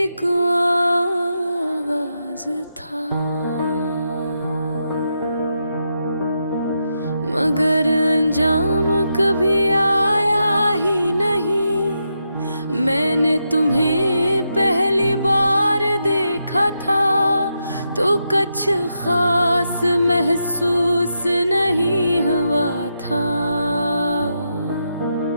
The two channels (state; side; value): inverted; both; correlation -0.84